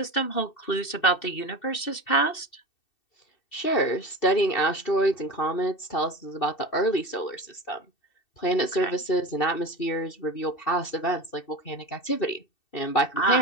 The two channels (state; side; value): late; right; 2.7 ms